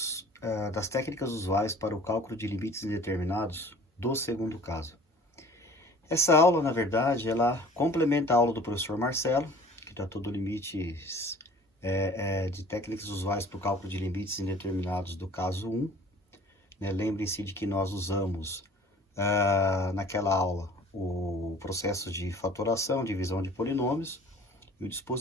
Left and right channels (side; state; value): both; normal; correlation 0.48